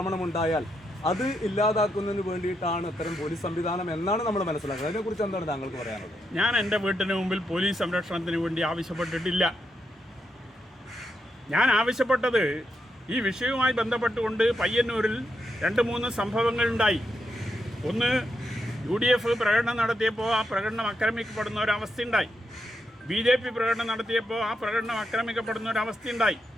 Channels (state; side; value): normal; both; correlation 0.82